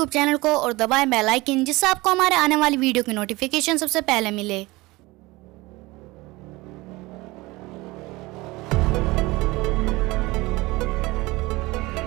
channel को और दबाएं बेल आइकन, जिससे आपको हमारे आने वाली वीडियो की नोटिफिकेशन सबसे पहले मिले।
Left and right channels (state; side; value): quieter; left; 21.5 dB